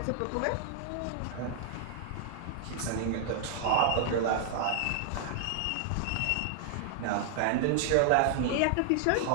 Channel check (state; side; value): different; both; correlation 0.00